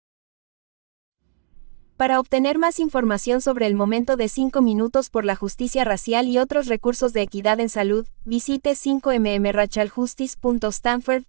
Para obtener más información sobre el momento de 5 minutos por la justicia racial y otros recursos de equidad en salud, visite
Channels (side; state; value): left; silent; digital silence